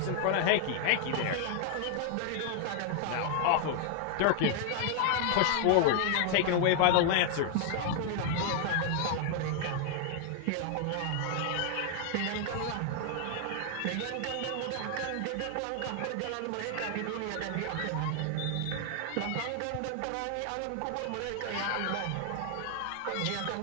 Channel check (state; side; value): different; both; correlation 0.00